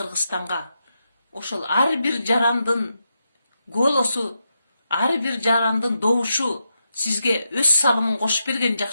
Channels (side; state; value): both; inverted; correlation -0.84